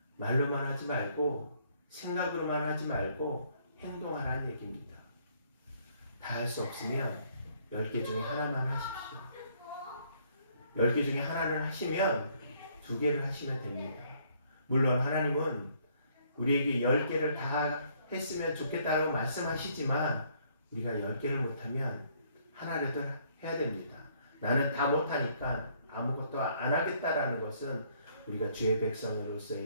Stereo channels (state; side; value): inverted; both; correlation -0.65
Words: 말로만 하지 말고 생각으로만 하지 말고 행동하라는 얘기입니다. 다 할 수 없으면 10개 중에 하나만 하십시오. 10개 중에 하나를 하시면 2개를 하시면 됩니다. 물론 하나님은 우리에게 10개를 다 했으면 좋겠다고 말씀하시지만 우리가 10개를 못하면 하나라도 해야 됩니다. 나는 다 못하니까 아무것도 안 하겠다라는 것은 우리가 주의